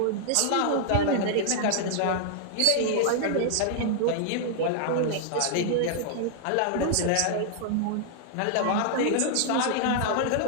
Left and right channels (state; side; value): different; both; correlation -0.01